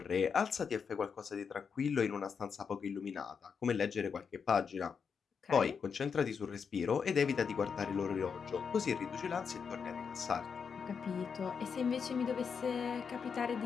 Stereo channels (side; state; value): right; quieter; 6.2 dB